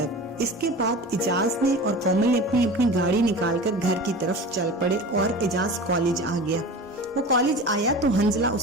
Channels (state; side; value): normal; both; correlation 0.35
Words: इसके बाद इजाज ने और कोमल ने अपनी अपनी गाड़ी निकालकर घर की तरफ चल पड़े और इजाज कॉलेज आ गया। वो कॉलेज आया तो हंजला